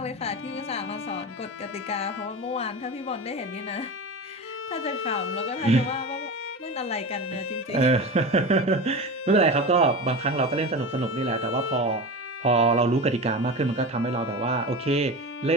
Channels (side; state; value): both; normal; correlation 0.27